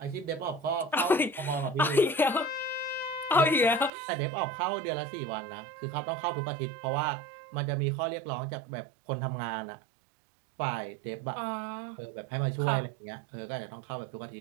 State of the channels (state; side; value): drops out; left; at 3.9 s